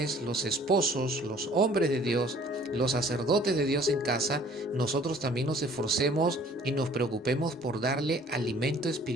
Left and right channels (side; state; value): both; normal; correlation 0.54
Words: los esposos, los hombres de Dios, los sacerdotes de Dios en casa, nosotros también nos esforcemos y nos preocupemos por darle alimento